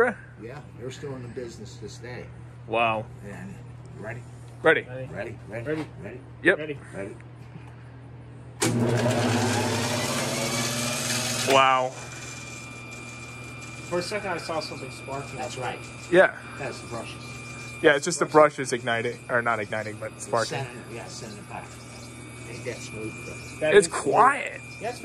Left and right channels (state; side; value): identical; both; correlation 1.00